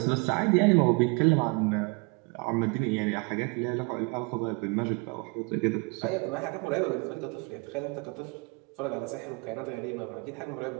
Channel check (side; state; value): left; quieter; 30.7 dB